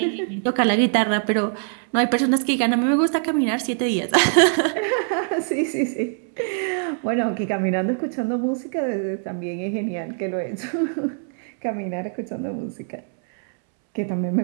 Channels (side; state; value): left; silent; 63 dB below the other